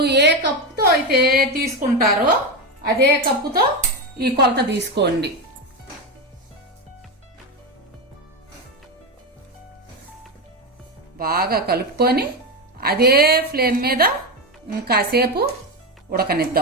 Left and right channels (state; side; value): normal; both; correlation 0.13